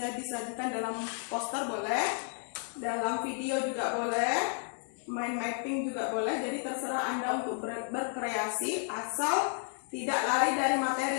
disajikan dalam poster boleh, dalam video juga boleh, mind mapping juga boleh. Jadi terserah Anda untuk berkreasi asal tidak lari dari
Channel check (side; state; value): right; silent; 56 dB below the other